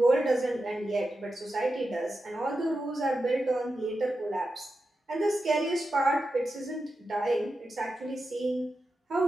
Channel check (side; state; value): both; normal; correlation 0.90